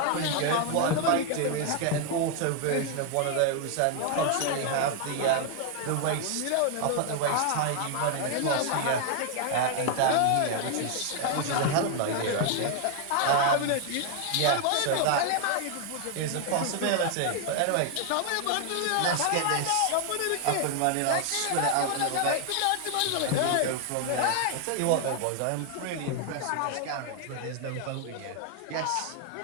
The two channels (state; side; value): different; both; correlation 0.00